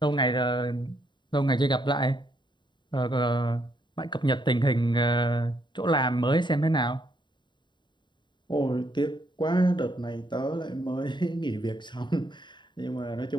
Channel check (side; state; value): right; late; 0.22 ms